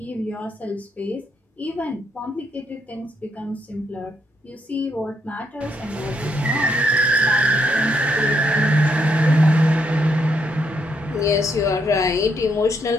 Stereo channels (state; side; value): normal; both; correlation 0.76